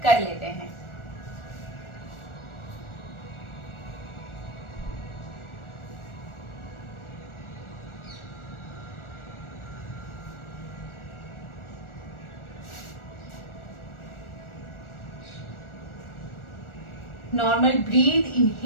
कर लेते हैं। Normal breath,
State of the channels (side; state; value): right; late; 1.4 ms